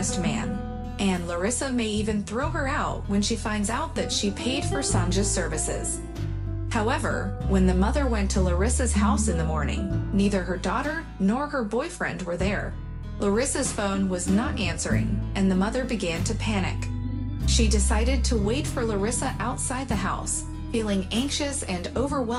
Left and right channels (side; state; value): both; identical; correlation 1.00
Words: man, and Larissa may even throw her out when she finds out that she paid for Sanja's services. However, when the mother went to Larissa's house in the morning, neither her daughter nor her boyfriend were there. Larissa's phone was not answering, and the mother began to panic. She decided to wait for Larissa outside the house, feeling anxious and